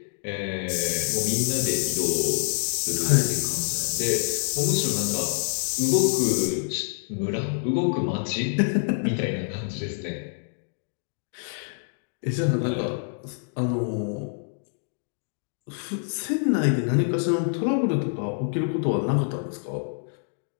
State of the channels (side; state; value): right; silent; digital silence